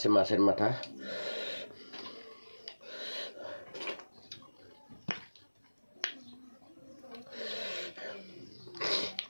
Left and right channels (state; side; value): inverted; both; correlation -1.00